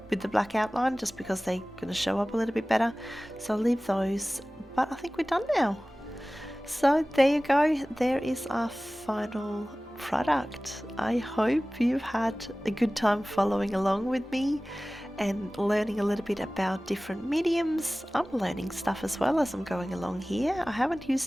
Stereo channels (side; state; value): both; normal; correlation 0.98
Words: with the black outline, just because they're going to show up a little bit better. So I'll leave those, but I think we're done now. So there you go, there is our final product. I hope you've had a good time following along with me and learning a little bit about different mediums. I'm learning stuff as well as I'm going along here. I haven't